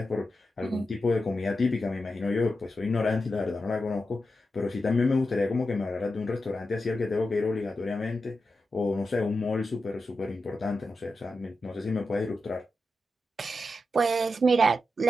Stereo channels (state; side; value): normal; both; correlation 0.89